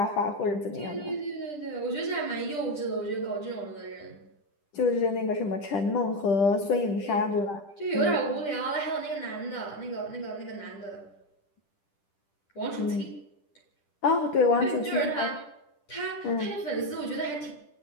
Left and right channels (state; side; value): late; right; 10 ms